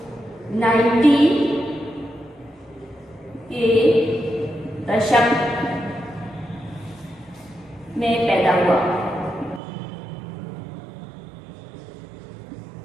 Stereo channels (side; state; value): left; drops out; at 9.6 s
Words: 90 के दशक में पैदा हुआ।